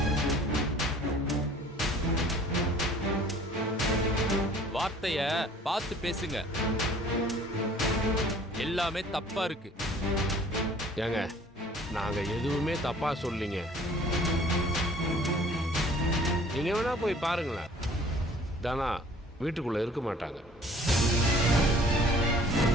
வார்த்தைய பார்த்து பேசுங்க. எல்லாமே தப்பா இருக்கு. ஏங்க, நாங்க எதுவுமே தப்பா சொல்லீங்க. நீங்க வேணா போய் பாருங்களேன், தானா வீட்டுக்குள்ள இருக்க மாட்டாங்க.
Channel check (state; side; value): normal; both; correlation 0.52